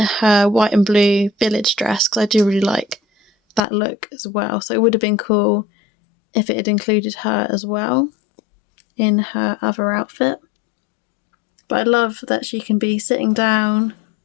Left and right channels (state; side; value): drops out; right; at 3.6 s